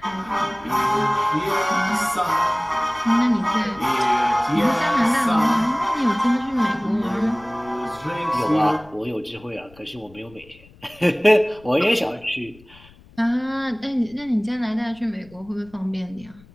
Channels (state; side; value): noise; left; rumble, 25 dB below the sound